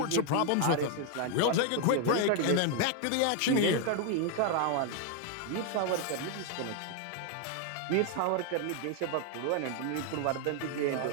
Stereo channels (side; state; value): both; different; correlation 0.00